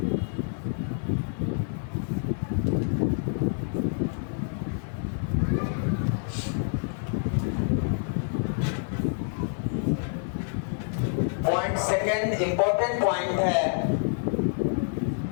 पॉइंट सेकेंड, इंपॉर्टेंट पॉइंट है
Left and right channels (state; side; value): silent; right; digital silence